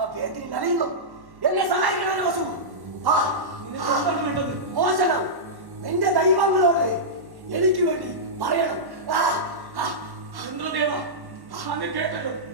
വേദന നനയുന്നു. എന്നെ സഹായിക്കണം വസു. മോശനം നിന്റെ ദൈവങ്ങളോട് എനിക്ക് വേണ്ടി പറയണം. ഇന്ദ്രദേവ, അങ്ങ് കേട്ടല്ലോ,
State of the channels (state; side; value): late; left; 1.1 ms